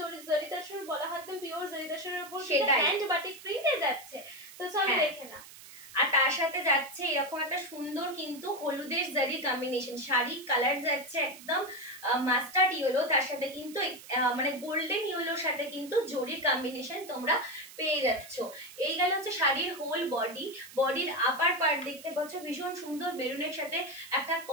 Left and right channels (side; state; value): right; noise; hiss, 17 dB below the sound